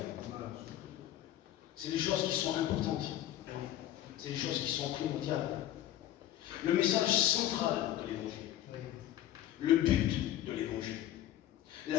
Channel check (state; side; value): quieter; right; 12.5 dB